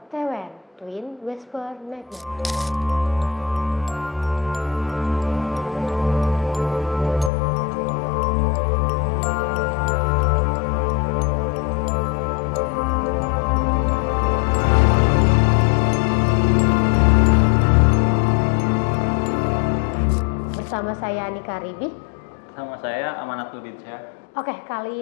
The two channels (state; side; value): drops out; right; at 7.3 s